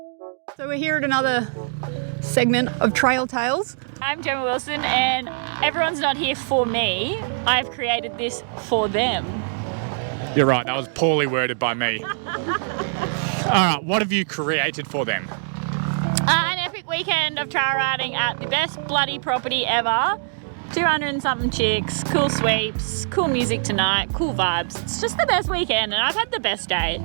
we're here at another segment of Trail Tales. I'm Gemma Wilson and everyone's not here for me. I've created this for them. You're right, that was poorly worded by me. Alright, what have you created for them? An epic weekend of trail riding at the best bloody property ever. 200 and something chicks, cool sweeps, cool music tonight, cool vibes. It's just the best weekend and I've had the best day.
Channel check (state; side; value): silent; left; digital silence